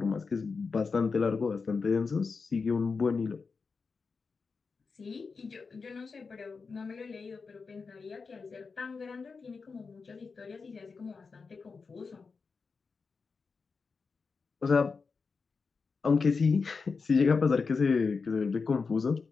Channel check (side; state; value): right; quieter; 4.8 dB